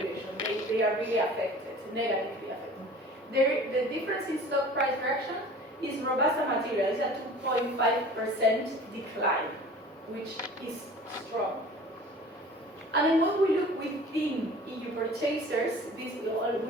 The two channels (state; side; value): normal; both; correlation 0.43